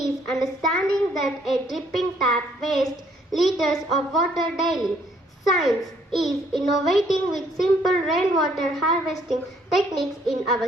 understanding that a dripping tap wastes liters of water daily. Science is innovating with simple rainwater harvesting techniques in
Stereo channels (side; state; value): both; normal; correlation 0.66